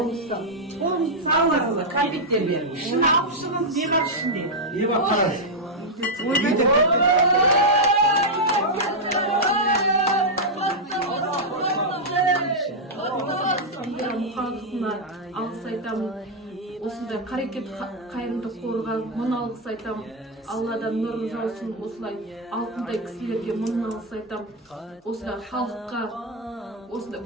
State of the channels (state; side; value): normal; both; correlation -0.02